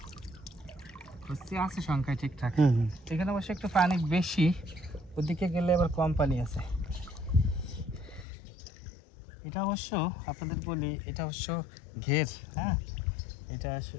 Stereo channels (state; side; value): drops out; right; at 8.2 s